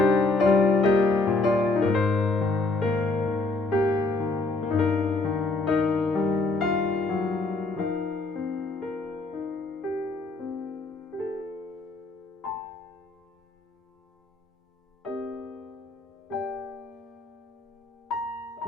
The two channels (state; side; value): quieter; right; 3.3 dB